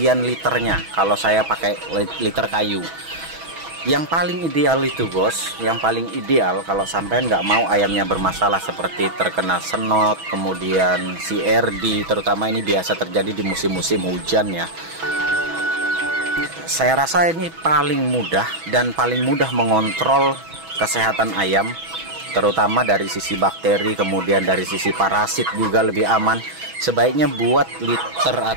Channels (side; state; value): left; late; 6.1 ms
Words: liternya kalau saya pakai liter kayu? Yang paling ideal itu, bos, yang paling ideal kalau sampean nggak mau ayamnya bermasalah seperti terkena senot, kemudian CRD, terutama ini biasa terjadi di musim-musim hujan ya. Saya rasa ini paling mudah dan paling mudah mengontrol kesehatan ayam, terutama dari sisi bakteri, kemudian dari sisi parasit juga lebih aman. Sebaiknya buat liter